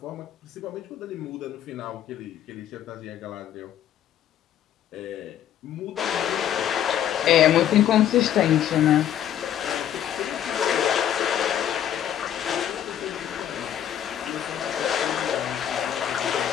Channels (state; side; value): quieter; right; 10.5 dB